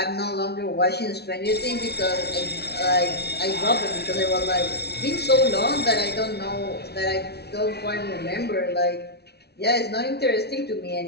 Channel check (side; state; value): right; late; 0.48 ms